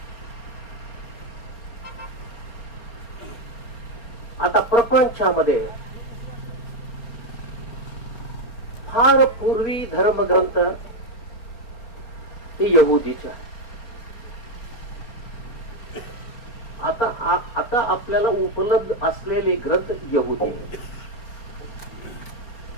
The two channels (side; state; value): right; late; 4.3 ms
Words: आता प्रपंचामध्ये फार पूर्वी धर्मग्रंथ हे यहुदीचे आहे। आता आपल्याला उपलब्ध असलेले ग्रंथ यहुदी